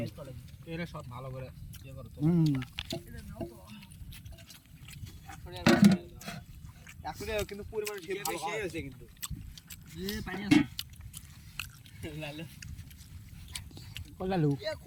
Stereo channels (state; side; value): identical; both; correlation 1.00